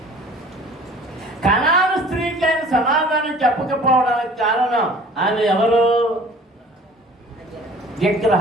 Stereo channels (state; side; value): normal; both; correlation 0.48